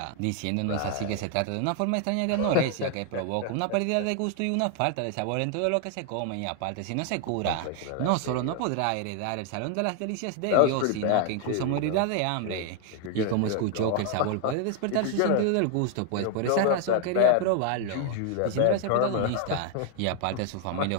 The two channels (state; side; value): different; both; correlation 0.00